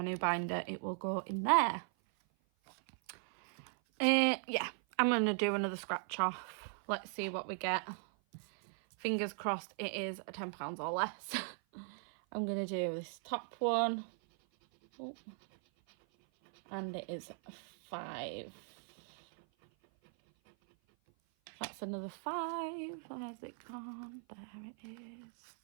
new binder, it will go in there. Yeah, I'm going to do another scratch off. Let's see what we get. Fingers crossed it is £10 or less. I'm going to do this top one. Oh. And it is 5. That's another 5. Where's it gone? There it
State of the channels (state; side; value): silent; left; 52 dB below the other